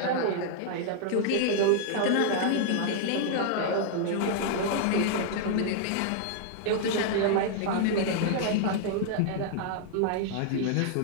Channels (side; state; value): both; different; correlation -0.01